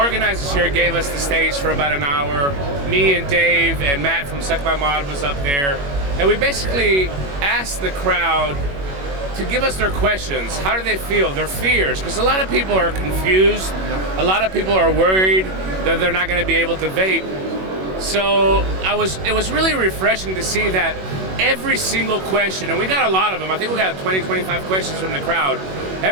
here gave us the stage for about an hour. Me and Dave and Matt from Suck My Mod was up there. And we basically asked the crowd to give us their questions. How do they feel? Their fears. Because a lot of people are confused. A lot of people are worried that they're not going to be able to vape. So it was really refreshing to see that every single question, and we got a lot of them. I think we got 20, 25 questions from the crowd.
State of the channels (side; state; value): left; late; 21 ms